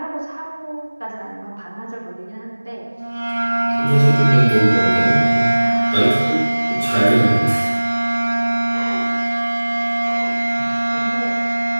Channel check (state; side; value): inverted; both; correlation -1.00